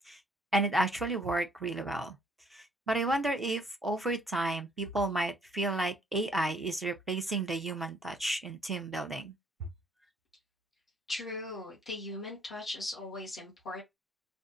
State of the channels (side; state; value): both; normal; correlation 0.64